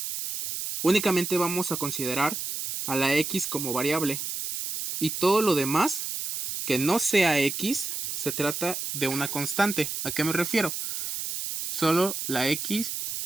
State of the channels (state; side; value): noise; right; hiss, 4 dB below the sound